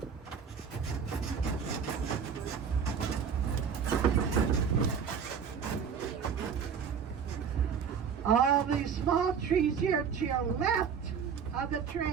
All these small trees here to your left of the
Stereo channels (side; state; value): left; quieter; 6.9 dB